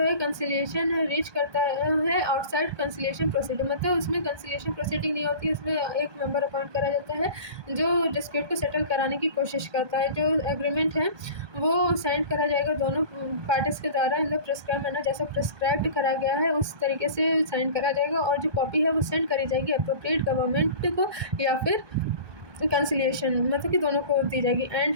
कंसिलिएशन रीच करता है आउटसाइड कंसिलिएशन प्रोसीडिंग। मतलब उसमें कंसिलिएशन प्रोसीडिंग नहीं होती, उसमें एक मेंबर अपॉइंट करा जाता है जो डिस्प्यूट को सेटल कराने की कोशिश करता है। जो एग्रीमेंट है वो सेंड करा जाएगा दोनों पार्टीज के द्वारा इन द प्रिस्क्राइब मैनर, जैसा प्रिस्क्राइब्ड करा गया है उस तरीके से साइन करा जाएगा, और जो कॉपी है वो सेंड करी जाएगी अप्रोप्रिएट गवर्नमेंट को या फिर कंसिलिएशन, मतलब कि दोनों को दी जाएगी। एंड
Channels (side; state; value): left; late; 1.2 ms